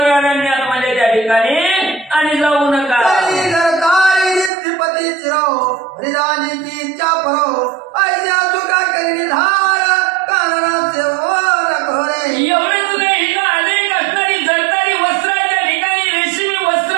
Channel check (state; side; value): drops out; left; at 4.5 s